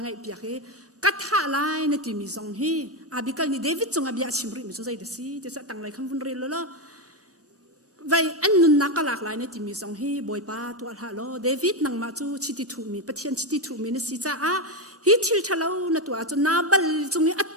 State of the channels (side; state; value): both; normal; correlation 0.10